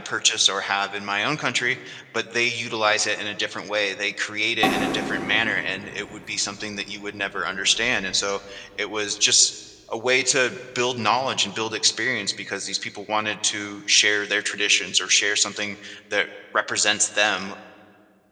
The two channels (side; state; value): both; identical; correlation 1.00